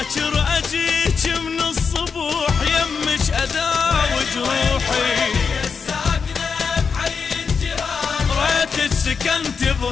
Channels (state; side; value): quieter; right; 5.7 dB